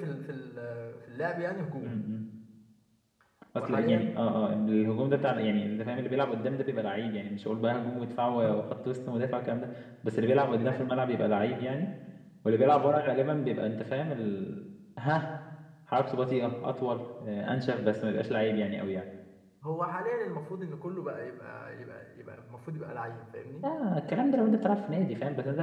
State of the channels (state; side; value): identical; both; correlation 1.00